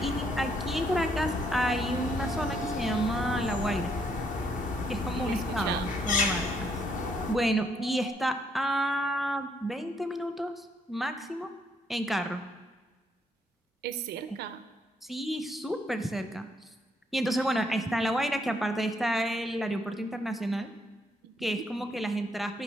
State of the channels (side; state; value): both; normal; correlation 0.72